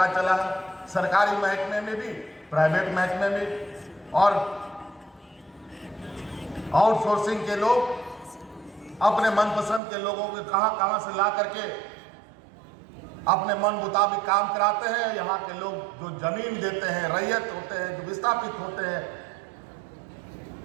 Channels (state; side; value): drops out; left; at 9.8 s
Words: चला है, सरकारी महकमे में भी, प्राइवेट महकमे में, और आउटसोर्सिंग के लोग अपने मनपसंद के लोगों को कहां से ला करके अपने मन मुताबिक काम कराते हैं। यहाँ के लोग जो जमीन देते हैं, रैयत होते हैं, जो विस्थापित होते हैं,